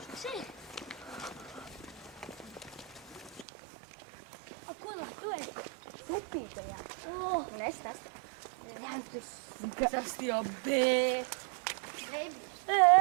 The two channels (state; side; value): drops out; left; at 3.5 s